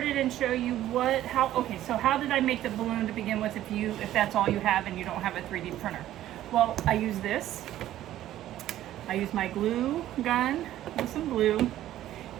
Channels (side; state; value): left; quieter; 13.2 dB